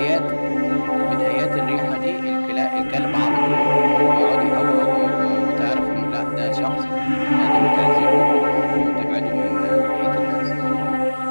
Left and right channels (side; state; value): both; inverted; correlation -1.00